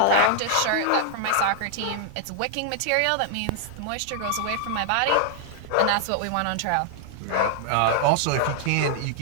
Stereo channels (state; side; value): different; both; correlation 0.00